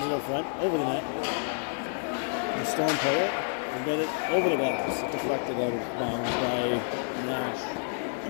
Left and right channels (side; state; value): right; silent; digital silence